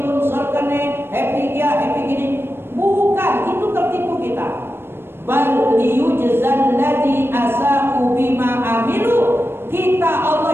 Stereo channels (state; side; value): late; left; 0.11 ms